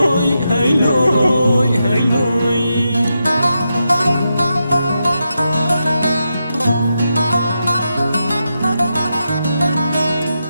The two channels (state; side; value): inverted; both; correlation -0.86